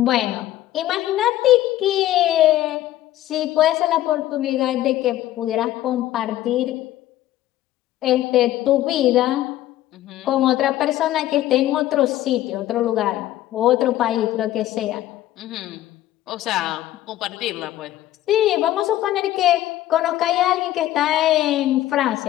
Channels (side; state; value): right; quieter; 14.0 dB